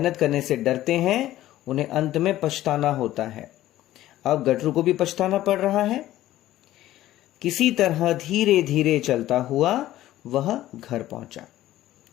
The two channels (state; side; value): quieter; right; 14.4 dB